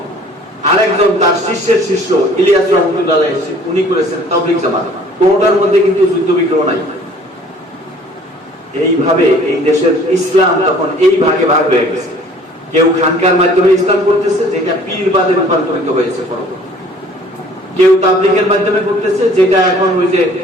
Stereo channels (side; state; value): both; normal; correlation 0.53